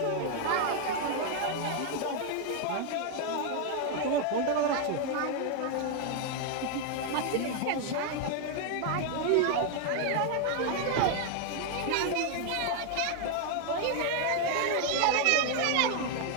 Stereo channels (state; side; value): different; both; correlation 0.00